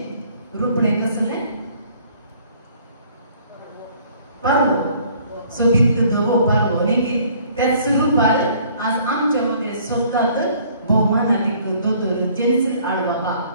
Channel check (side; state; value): both; inverted; correlation -0.58